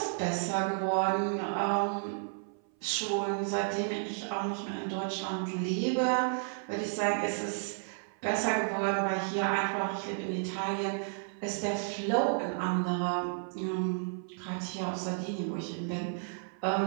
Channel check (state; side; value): silent; left; 56 dB below the other